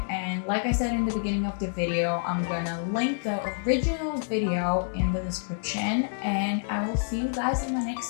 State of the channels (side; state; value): right; silent; digital silence